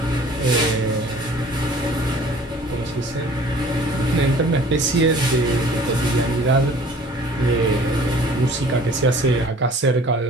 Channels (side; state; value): both; normal; correlation 0.50